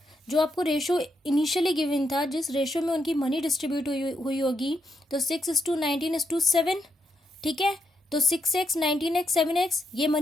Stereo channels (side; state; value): both; normal; correlation 0.81